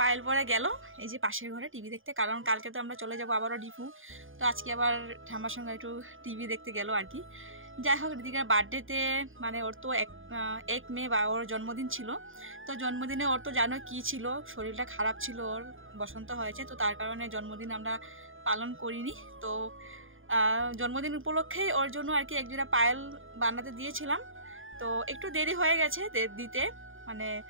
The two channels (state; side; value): late; left; 0.59 ms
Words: পায়েল পরে গেল এই যে পাশের ঘরে টিভি দেখতে, কারণ কালকে তো আমরা চলে যাবো আবারও ডিপু, তো আজকে আবার ঠাম্মার সঙ্গে একটু টিভি দেখতে গেল আর কি। যাই হোক ঋতিকার বার্থডেতে মানে ওর তো 1 মে বা ওর জন্মদিন ছিল, তো জন্মদিনে ওর তো জানো কি ছিল, শরীরটা খারাপ ছিল, ওর বসন্ত হয়েছে, তো তার কারণে জন্মদিন আমরা পালন করিনি। তো জন্মদিন উপলক্ষেই ওর জন্য আর কি এক জোড়া পায়েল বানাতে দিয়েছিলাম, তো একটু দেরি হয়ে গেছে দিতে, মানে